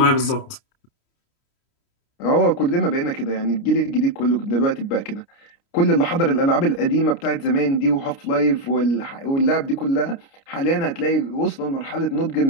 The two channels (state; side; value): late; right; 29 ms